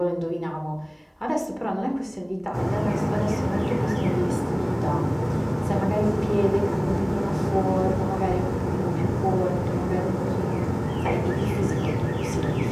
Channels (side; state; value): both; identical; correlation 1.00